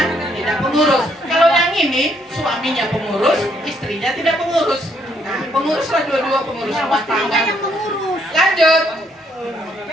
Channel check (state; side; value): normal; both; correlation 0.71